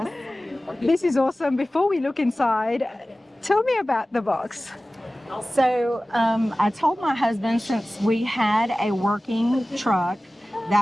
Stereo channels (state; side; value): normal; both; correlation 0.97